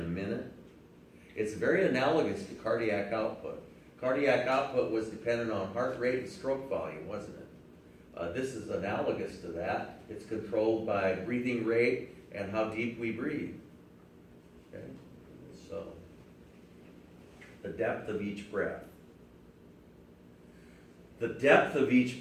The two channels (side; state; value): both; identical; correlation 1.00